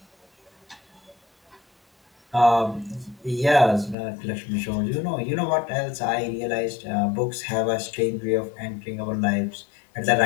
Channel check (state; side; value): drops out; right; at 4.0 s